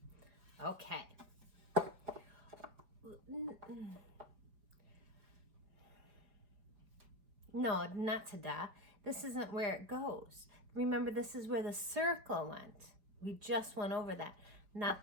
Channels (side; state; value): left; late; 4.9 ms